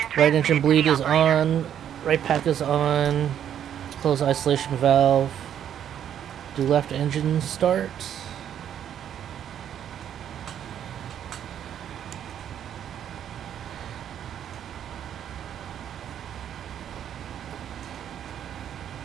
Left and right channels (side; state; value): left; quieter; 9.7 dB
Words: right engine transmitted bleed to is the operator. on. Right pack is on. Close isolation valve. Do left engine start.